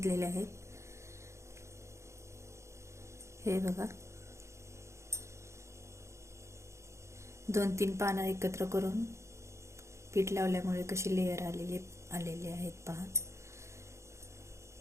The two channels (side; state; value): left; late; 0.14 ms